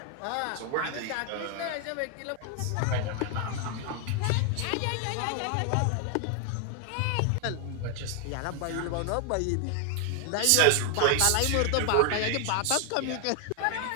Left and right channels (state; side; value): different; both; correlation 0.00